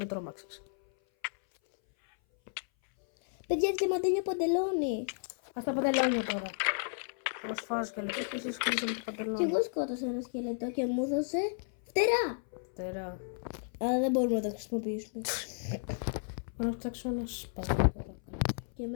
τρόμαξες. Παιδιά, διαμαντένιο παντελόνι. Ας τα παντελόνια τώρα. Εγώ σφάζω και λεπτό και εσείς κλείσαμε το Και παντελόνι. εγώ σκότωσα ένα σκελετό και μου έδωσε φτερά. Τερά. Αλλά δεν μπορούμε να τα χρησιμοποιήσουμε. Να φτιάξω ένα σπαθί τώρα. Και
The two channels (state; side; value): silent; right; 56 dB below the other